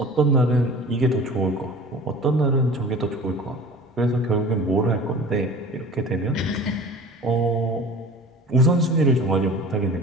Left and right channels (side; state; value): both; normal; correlation 0.41